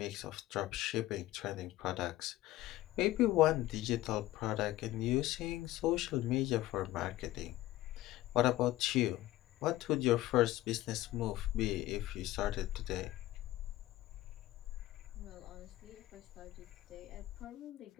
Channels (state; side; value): quieter; right; 15.9 dB